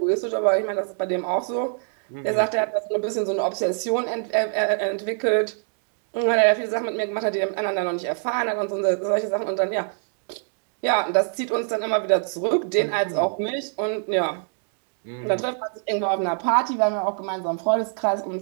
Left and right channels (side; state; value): left; silent; 60 dB below the other